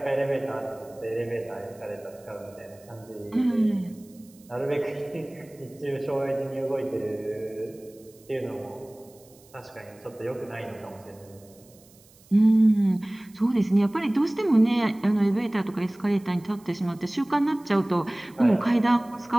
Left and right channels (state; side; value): noise; right; hiss, 27 dB below the sound